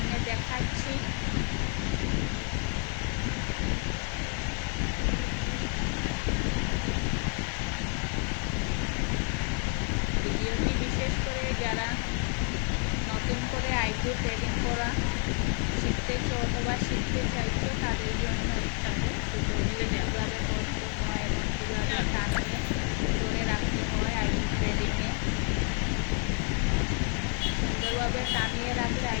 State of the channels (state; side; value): quieter; right; 37.6 dB